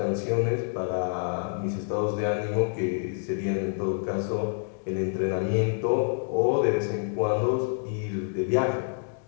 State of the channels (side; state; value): right; silent; digital silence